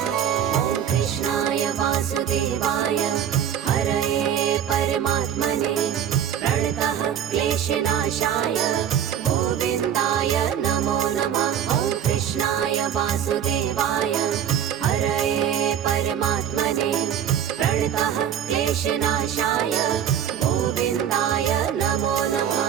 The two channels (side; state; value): left; quieter; 9.3 dB